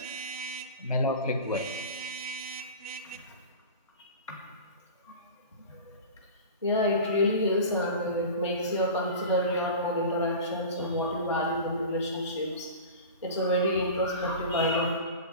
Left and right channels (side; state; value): both; inverted; correlation -0.33